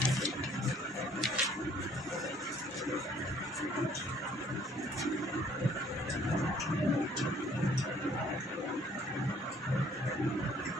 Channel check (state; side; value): normal; both; correlation 0.60